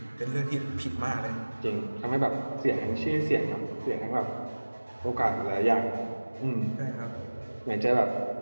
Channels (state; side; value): inverted; both; correlation -1.00